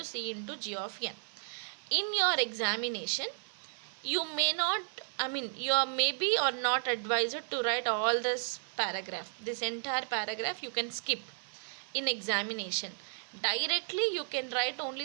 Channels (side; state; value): left; silent; 55 dB below the other